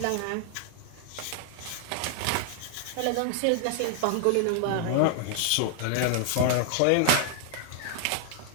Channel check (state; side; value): different; both; correlation 0.00